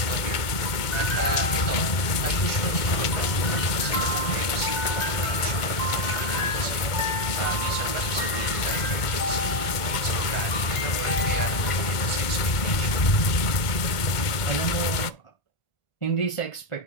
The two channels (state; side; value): late; right; 1.5 ms